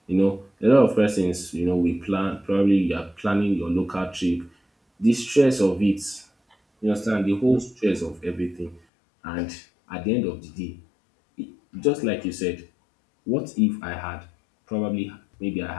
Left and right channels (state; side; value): drops out; right; at 8.8 s